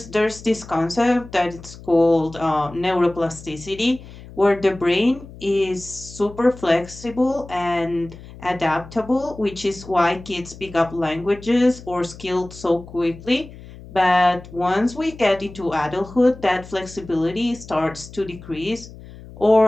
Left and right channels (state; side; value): noise; left; hum, 17 dB below the sound